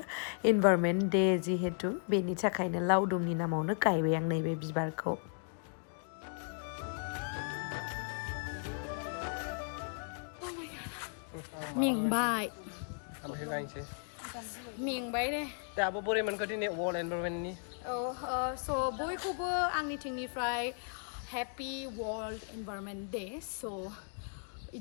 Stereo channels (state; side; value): silent; right; 54 dB below the other